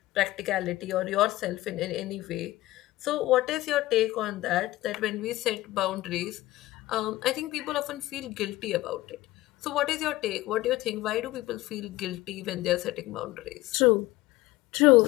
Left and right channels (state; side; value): quieter; right; 17.6 dB